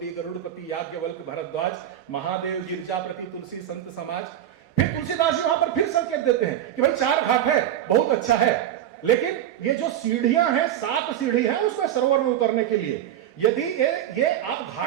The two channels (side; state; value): left; quieter; 11.2 dB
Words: गरुड़पति याज्ञवल्क्य भरद्वाज, महादेव गिरजापति तुलसी संत समाज। फिर तुलसीदास जी वहां पर फिर संकेत देते हैं कि भाई 4 घाट है, बहुत अच्छा है, लेकिन ये जो सीढ़ियां हैं, 7 सीढ़ी हैं उसमें सरोवर में उतरने के लिए, यदि ये आप